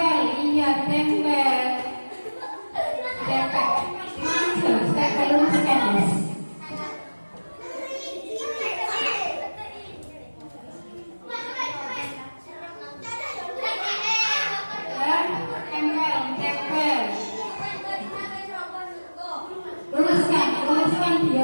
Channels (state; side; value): inverted; both; correlation -1.00